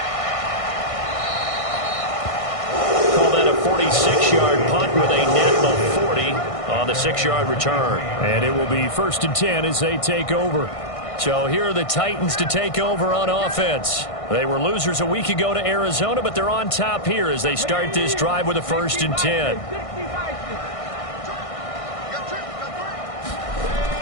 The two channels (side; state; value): right; late; 1.6 ms